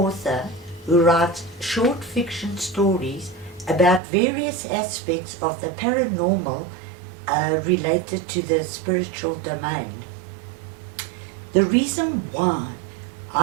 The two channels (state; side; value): drops out; left; at 4.0 s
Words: who writes short fiction stories about various aspects of the paranormal related to the spiritual domain. The reason why